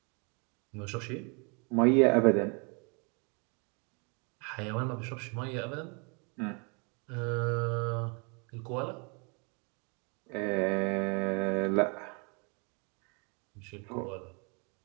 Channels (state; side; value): quieter; left; 34.2 dB